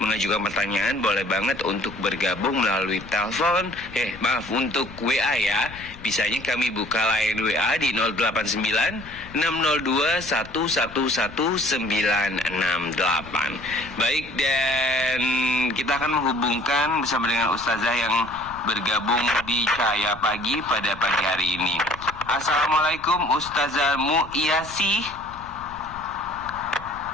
mengajukan pertanyaan, boleh banget untuk bergabung melalui telepon, untuk WA ya. Bisanya kami buka line WA di 089 602 111968. Baik, dan kita akan menghubungkan bersama dengan Ustazah yang bergabung di Cahaya Pagi pada pagi hari ini. Assalamualaikum Ustazah Mu'iyasi.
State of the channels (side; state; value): left; noise; rumble, 18 dB below the sound